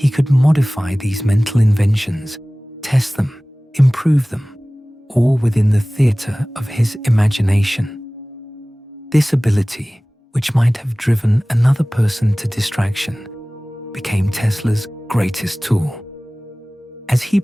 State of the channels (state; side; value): normal; both; correlation 0.98